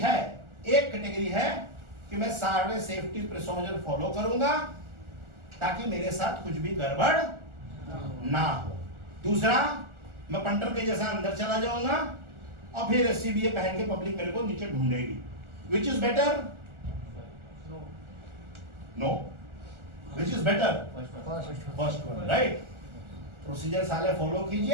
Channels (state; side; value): late; left; 1.4 ms